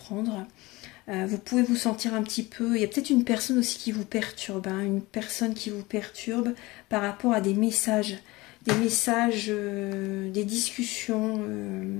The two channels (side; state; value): right; quieter; 21.5 dB